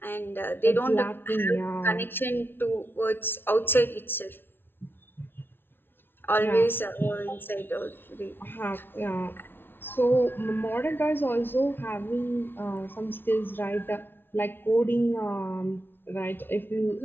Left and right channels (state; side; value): late; right; 0.11 ms